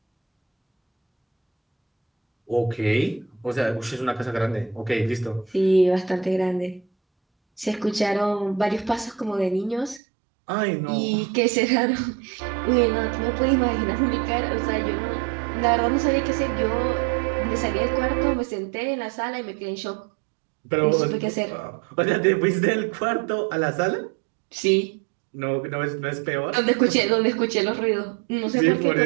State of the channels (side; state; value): left; drops out; at 10.0 s